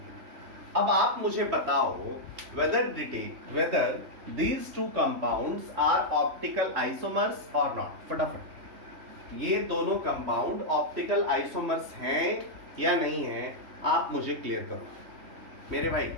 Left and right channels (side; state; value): left; late; 3.0 ms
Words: अब आप मुझे बताओ whether these two compounds are optical isomers or not. फटाफट ये दोनों कंपाउंड ऑप्टिकल आइसोमर्स हैं या नहीं हैं, आप मुझे क्लियर करो मेरे भाई.